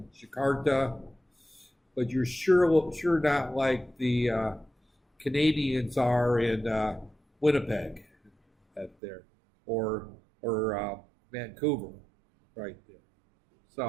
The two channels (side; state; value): left; drops out; at 9.0 s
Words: Jakarta, but you're sure not like the Canadians are in Winnipeg, there, or Vancouver, right there.